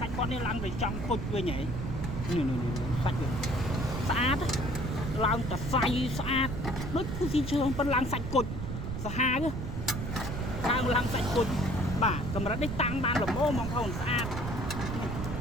ាច់គាត់នេះឡើងទៅចង់គុជវិញហ៎នេះសាច់វាស្អាតឡើងតសៃស្អាតដូចភូស៊ីលឈើប៉ុន្តែឡើងសាច់គុជសាហាវឡើងសាច់គុជបាទកម្រិតនេះតាំងបានល្មមបងប្អូនស្អាត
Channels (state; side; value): noise; right; rumble, 4 dB below the sound